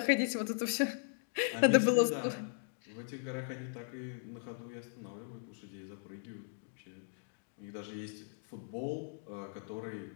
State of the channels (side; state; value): right; silent; digital silence